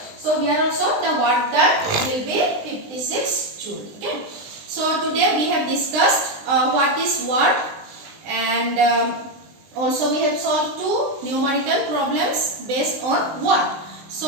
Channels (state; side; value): late; left; 20 ms